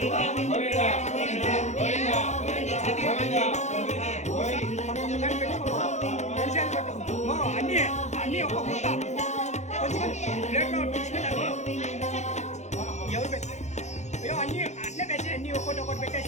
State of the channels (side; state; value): right; late; 0.33 ms